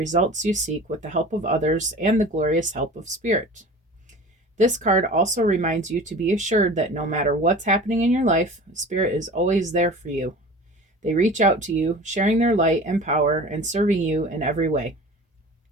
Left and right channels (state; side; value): normal; both; correlation 0.39